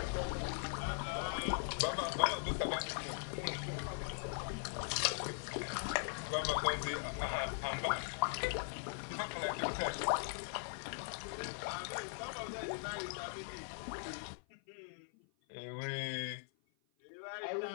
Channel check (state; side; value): silent; right; 51 dB below the other